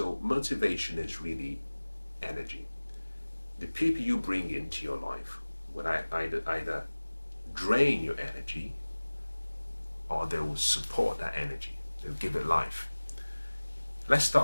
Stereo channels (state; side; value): inverted; both; correlation -1.00